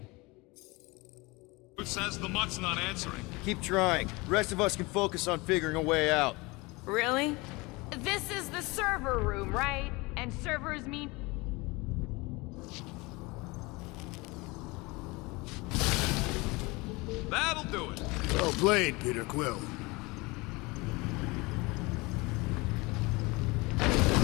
Who says the mutt's not answering? Keep trying. The rest of us can focus on figuring a way out. Really? This is the server room, right? And servers mean... That'll do it. Well played, Peter Quill.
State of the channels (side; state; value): right; quieter; 24.4 dB